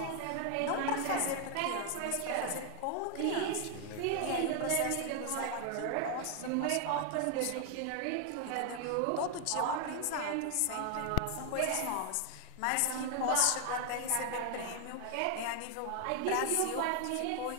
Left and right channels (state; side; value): different; both; correlation 0.00